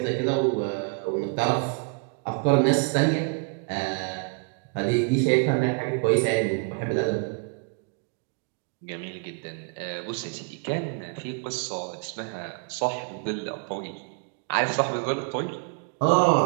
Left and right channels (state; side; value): quieter; left; 34.6 dB